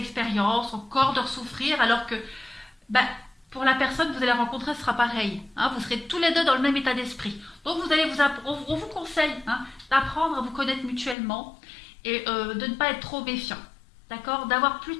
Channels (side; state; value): right; drops out; at 11.2 s